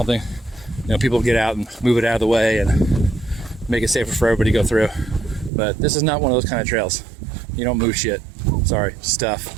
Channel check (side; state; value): left; drops out; at 5.5 s